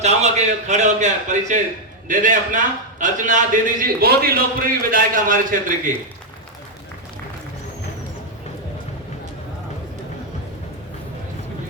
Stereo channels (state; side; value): normal; both; correlation 0.00